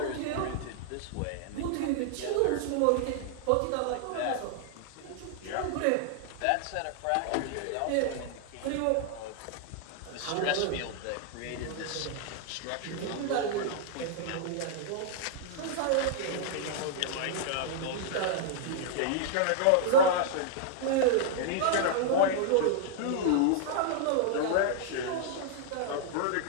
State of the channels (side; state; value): both; different; correlation -0.01